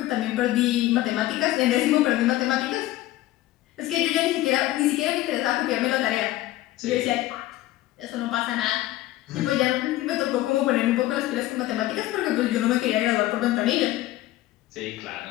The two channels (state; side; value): quieter; right; 16.0 dB